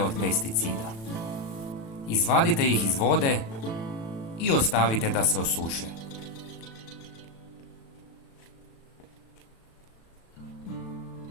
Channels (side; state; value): right; late; 36 ms